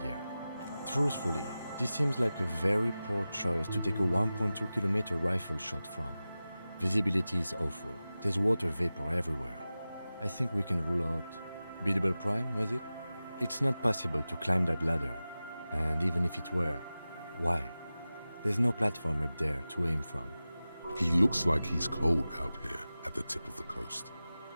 year. Truthfully, this seems like a very poor choice to take a 1.2 kilometer rifle shot from. Visibility is awful. There's water vapor everywhere. I think we can rule out Biddable Prime, was it? It's not possible to climb that ladder. And even if it were, why? There's no platform up there to aim from. He looks like he's cold out here at the tip of the coast.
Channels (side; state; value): both; inverted; correlation -0.95